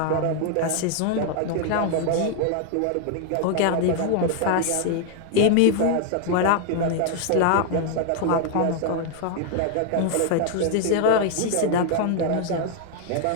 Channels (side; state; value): both; different; correlation 0.00